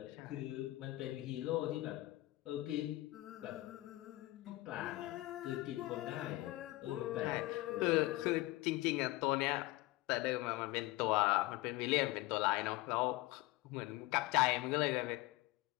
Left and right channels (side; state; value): right; quieter; 19.3 dB